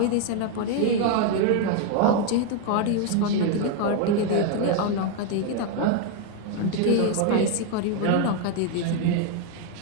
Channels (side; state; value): both; different; correlation 0.01